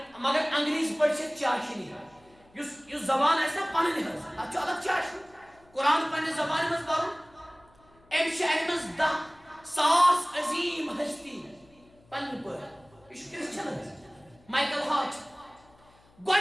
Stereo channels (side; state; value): left; noise; hum, 30 dB below the sound